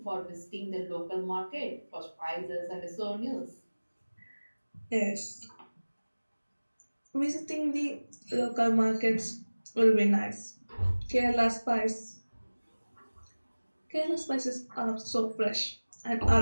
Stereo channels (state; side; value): inverted; both; correlation -1.00